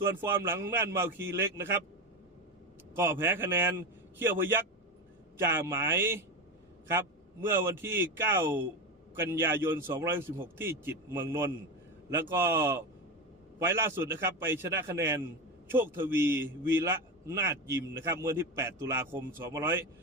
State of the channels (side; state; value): both; normal; correlation 0.19